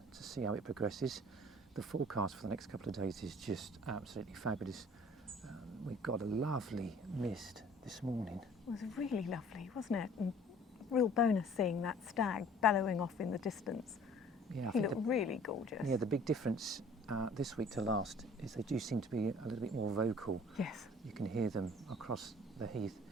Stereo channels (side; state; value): both; normal; correlation 0.52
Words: to see how it progresses. The forecast for the next couple of days is just absolutely fabulous. We've got a lovely mist this morning. It was really lovely, wasn't it? And real bonus seeing that stag bellowing off in the distance. Yeah, He looked really gorgeous. Yeah, the big difference this week to last is they do seem to be a little bit more vocal. Yes. You can hear them across the heath.